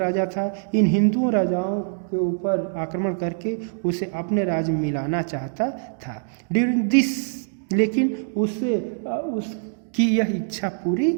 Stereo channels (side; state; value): left; silent; digital silence